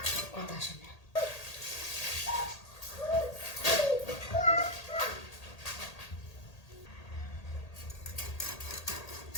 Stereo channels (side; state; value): right; late; 1.8 ms